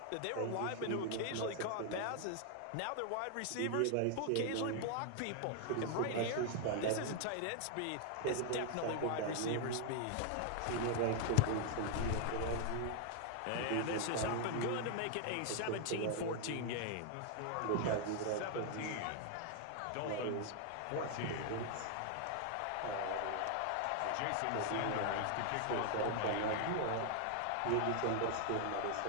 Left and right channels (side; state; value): both; different; correlation 0.00